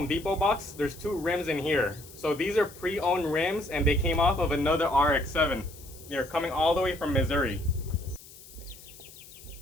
Depot box, there's two rims in here. So these are pre-owned rims and they came off of another RX-7. They're coming all the way from Missouri.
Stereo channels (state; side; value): noise; left; hiss, 19 dB below the sound